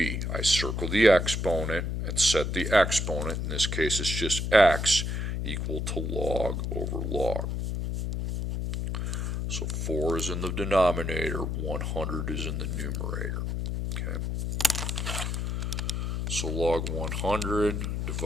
I circle the exponent and set the exponent, in this case it's just x, equal to log over log. So 4 is in the denominator, 100 is in the numerator. Okay. So log 100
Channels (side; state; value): left; noise; hum, 1 dB below the sound